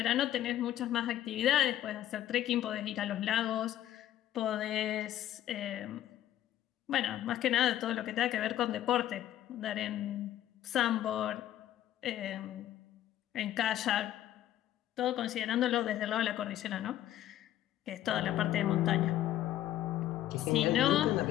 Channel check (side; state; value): right; quieter; 12.5 dB